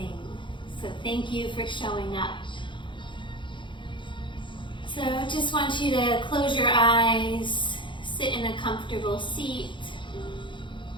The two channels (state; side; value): late; right; 0.23 ms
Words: So thank you for showing up. So I just want you to close your eyes, sit in a comfortable seat,